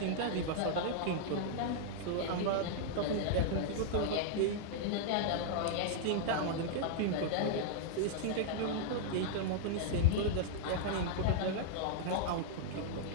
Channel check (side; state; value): both; different; correlation -0.01